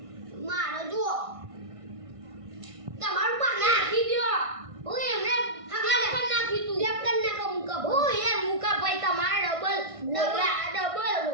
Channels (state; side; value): late; left; 1.6 ms